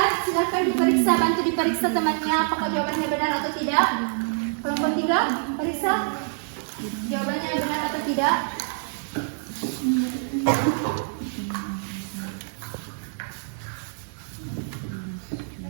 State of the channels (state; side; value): silent; left; digital silence